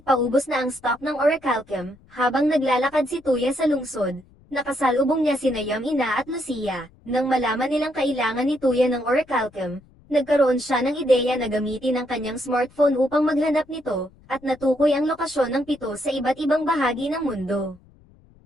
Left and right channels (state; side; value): noise; left; rumble, 28 dB below the sound